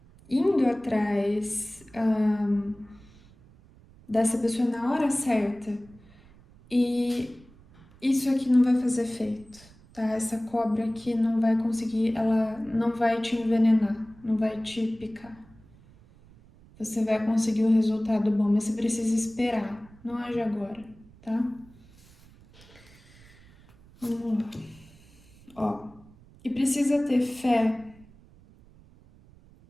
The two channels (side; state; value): right; noise; rumble, 25 dB below the sound